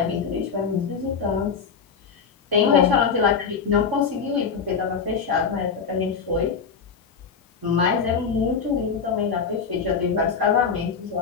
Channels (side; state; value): right; quieter; 6.0 dB